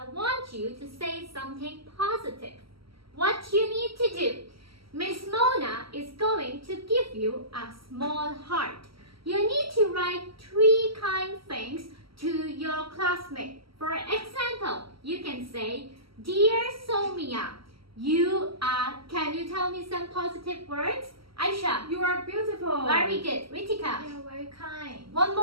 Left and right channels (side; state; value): left; late; 0.75 ms